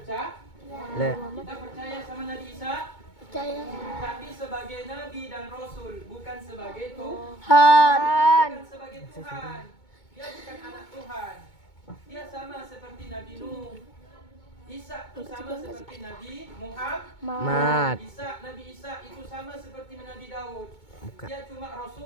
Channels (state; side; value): late; right; 2.2 ms